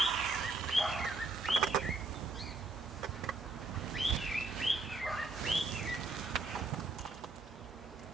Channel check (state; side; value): quieter; left; 3.4 dB